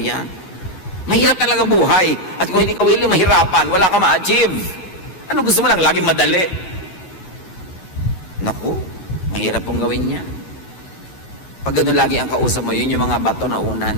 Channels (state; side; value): late; right; 11 ms